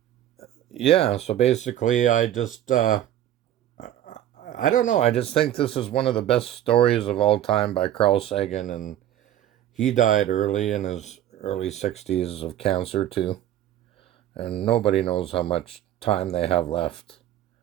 Yeah, so basically I just, I don't know. I just think this is one of the best stories of all time by Carl Sagan, and he died early in his early 60s of cancer too. And nobody knows how much time they have left.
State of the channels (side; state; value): left; quieter; 11.9 dB